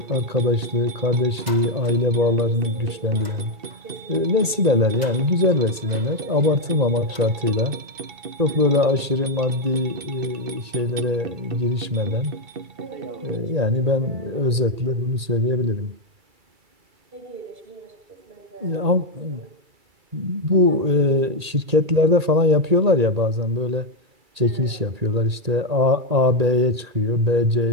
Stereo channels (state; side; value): late; left; 1.8 ms